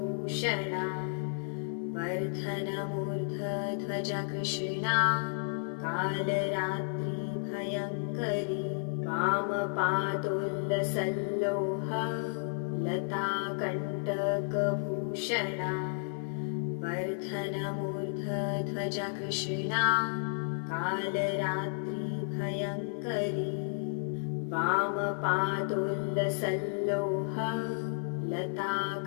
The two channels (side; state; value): right; silent; 56 dB below the other